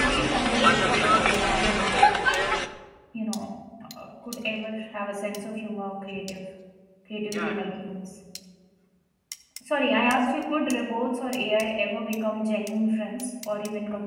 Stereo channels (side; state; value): both; identical; correlation 1.00